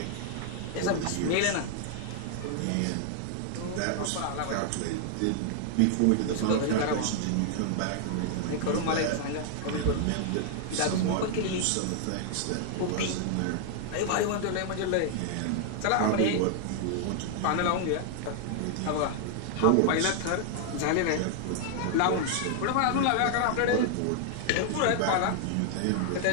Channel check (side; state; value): both; different; correlation 0.00